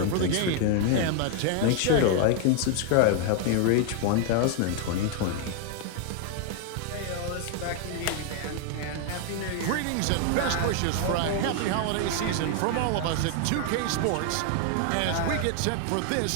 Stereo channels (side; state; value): both; different; correlation 0.00